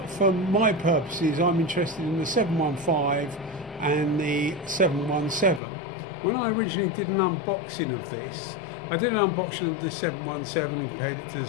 for my purposes, I'm interested in the 715 and the 717. When I originally did an unboxing of this, I did an unboxing of the 717 and compared it to the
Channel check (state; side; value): drops out; right; at 5.6 s